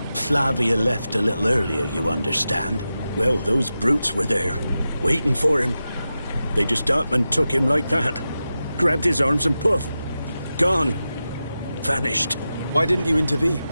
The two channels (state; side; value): inverted; both; correlation -0.92